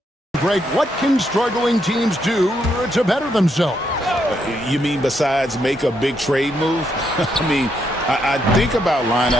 Greg, what can struggling teams do to better themselves? You mean besides make a big trade move? I mean, I think about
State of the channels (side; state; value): both; normal; correlation 0.77